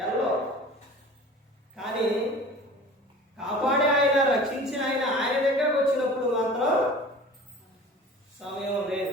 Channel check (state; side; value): normal; both; correlation 0.41